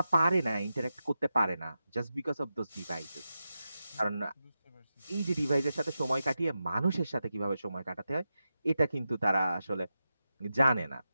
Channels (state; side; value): inverted; both; correlation -0.91